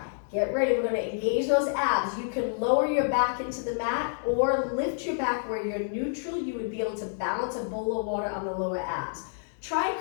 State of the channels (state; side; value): silent; right; digital silence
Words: Get ready, we're gonna engage those abs. You can lower your back into the mat or lift your back where you're neutral. You would be able to balance a bowl of water on the lower abs. Try